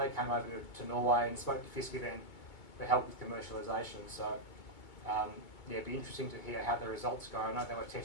came over to Norway and spoke to Fiskeven for help with commercialisation. So yeah, it'd be interesting to hear how the results go. I know they were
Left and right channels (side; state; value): right; late; 2.2 ms